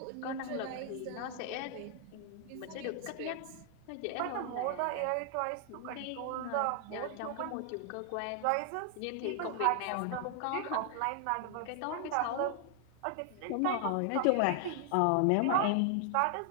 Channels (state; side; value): different; both; correlation 0.00